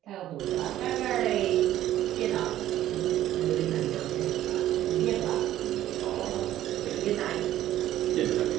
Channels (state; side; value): quieter; left; 13.1 dB